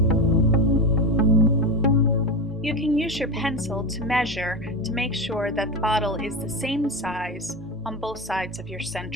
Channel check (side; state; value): both; normal; correlation 0.19